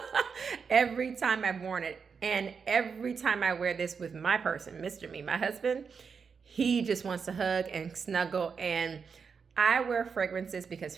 Every time I've worn it. And every time I wear this with my person, Mr. Me, my husband, he just wants to hug and snuggle. And I wear fragrances because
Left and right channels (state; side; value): quieter; left; 5.8 dB